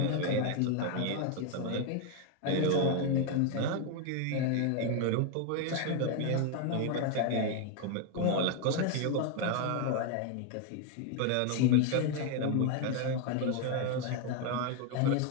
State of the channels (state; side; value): different; both; correlation 0.01